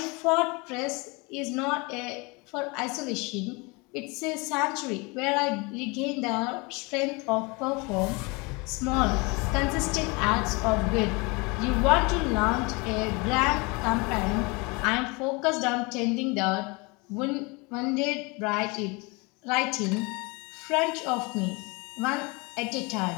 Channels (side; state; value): right; quieter; 27.6 dB